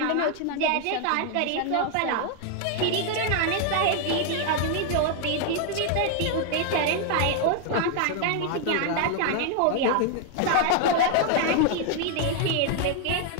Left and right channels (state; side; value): different; both; correlation 0.00